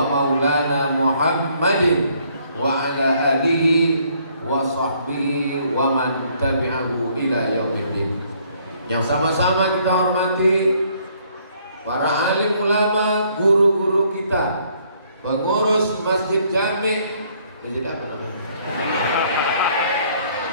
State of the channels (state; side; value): inverted; both; correlation -0.65